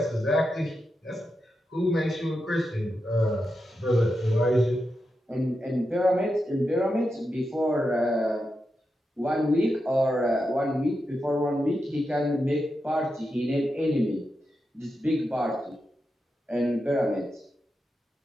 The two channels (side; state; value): both; normal; correlation 0.88